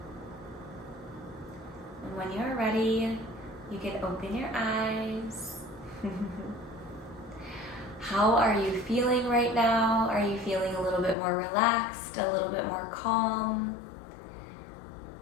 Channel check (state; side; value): drops out; right; at 11.2 s